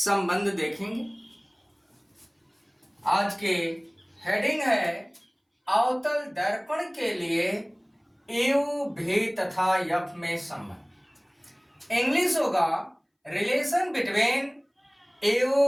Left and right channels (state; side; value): identical; both; correlation 1.00